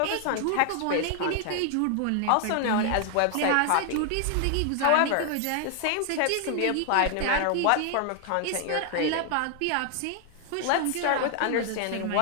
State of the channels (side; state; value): both; different; correlation 0.00